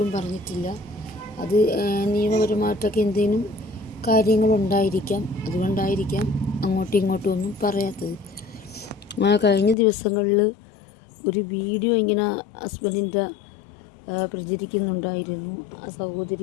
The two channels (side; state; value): right; drops out; at 9.8 s